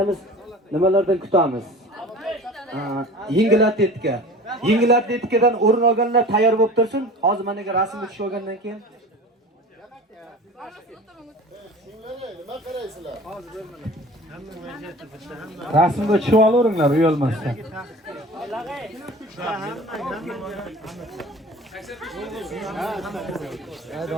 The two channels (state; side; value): normal; both; correlation 0.40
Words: nimalardan kutamiz? Yengil atletika. Yengil atletikadan o'rin olganlar tayyor bo'lib tursin. Hozir menga rasmga tushib olgandan keyin Rasmga tushib olaveringlar, uyalmasdan.